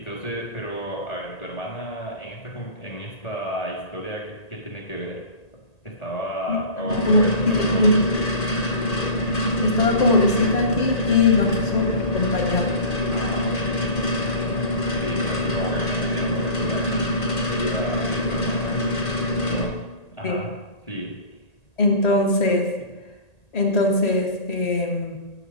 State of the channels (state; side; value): late; right; 1.8 ms